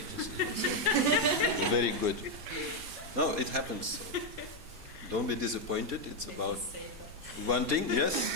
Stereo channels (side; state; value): left; late; 4.2 ms